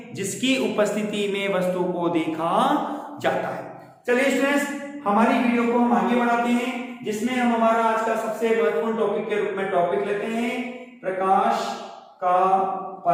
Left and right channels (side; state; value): both; identical; correlation 1.00